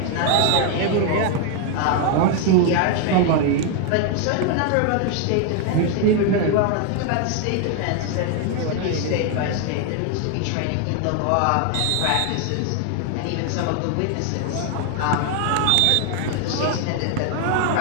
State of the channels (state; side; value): different; both; correlation 0.00